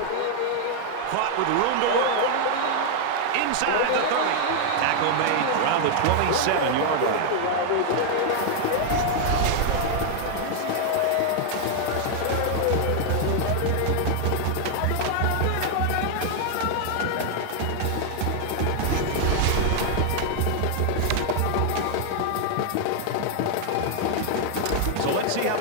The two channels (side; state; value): both; different; correlation 0.00